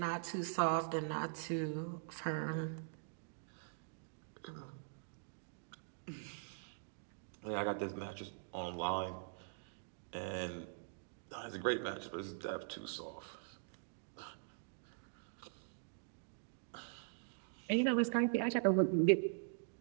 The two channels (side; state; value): left; silent; digital silence